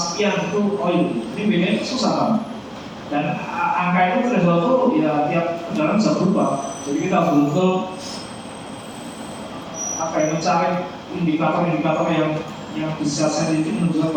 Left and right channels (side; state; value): both; identical; correlation 1.00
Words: itu oil, ini bedanya susah kan? Dan angka itu threshold itu ya tiap kendaraan bisa berubah. Jadi kita betul mencari indikator-indikator yang bisa sensitif menunjukkan